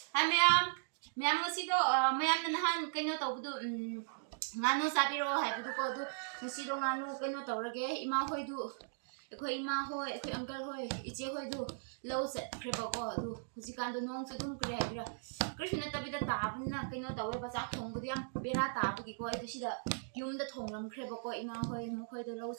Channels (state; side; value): silent; left; digital silence